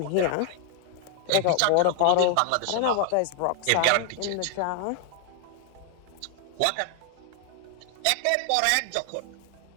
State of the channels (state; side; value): different; both; correlation 0.00